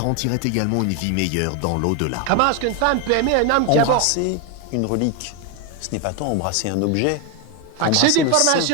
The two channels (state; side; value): different; both; correlation 0.01